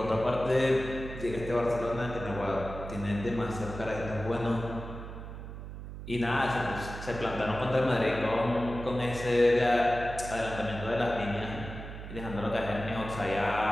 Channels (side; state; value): right; noise; hum, 10 dB below the sound